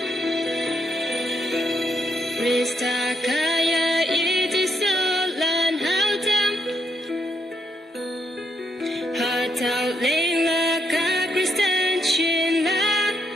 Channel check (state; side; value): normal; both; correlation 0.77